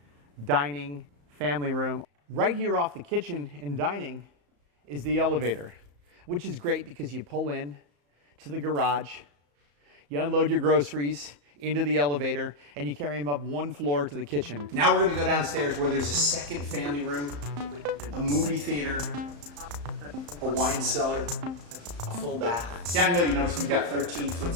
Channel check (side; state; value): left; late; 34 ms